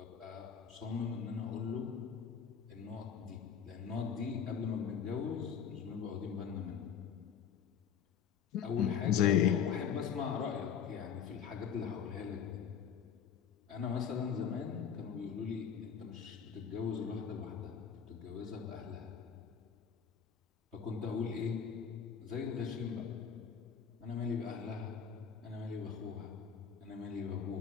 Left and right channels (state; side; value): quieter; right; 7.4 dB